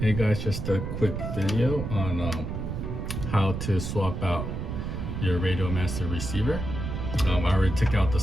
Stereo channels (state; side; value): noise; right; rumble, 4 dB below the sound